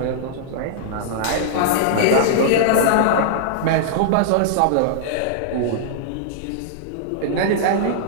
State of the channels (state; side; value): different; both; correlation -0.01